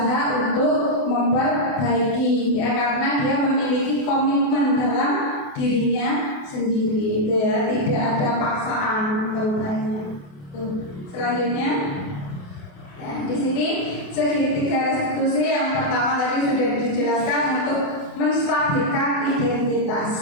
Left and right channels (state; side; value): late; right; 28 ms